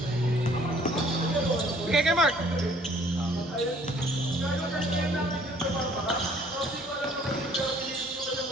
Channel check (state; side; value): normal; both; correlation 0.57